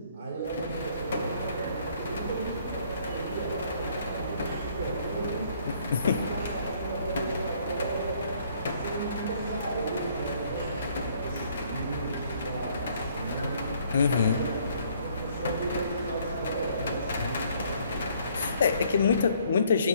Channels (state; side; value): inverted; both; correlation -0.63